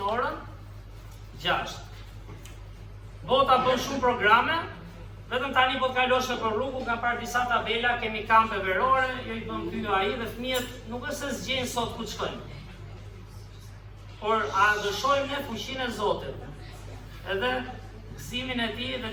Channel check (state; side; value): identical; both; correlation 1.00